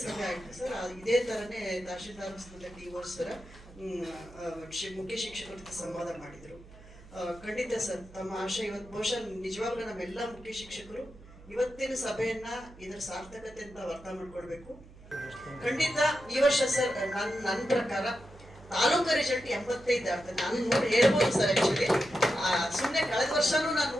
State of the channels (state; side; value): noise; right; hum, 20 dB below the sound